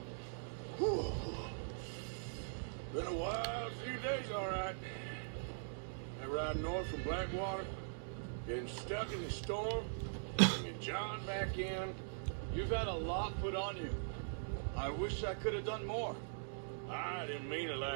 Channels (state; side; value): silent; left; digital silence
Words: Whew. Been a wild few days, all right. That ride north from Blackwater, getting stuck in the storm, bringing John back in. You've had a lot put on you. I wish I could have done more. I didn't mean it